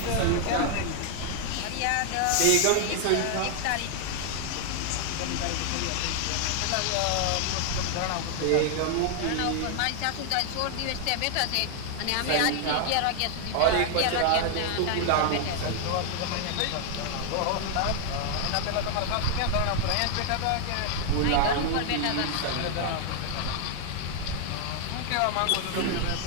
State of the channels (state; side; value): different; both; correlation 0.00